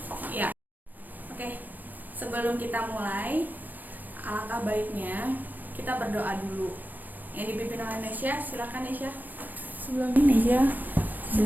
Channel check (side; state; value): left; late; 0.084 ms